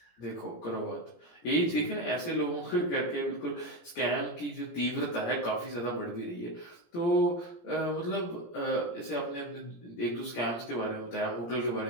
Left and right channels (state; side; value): late; right; 17 ms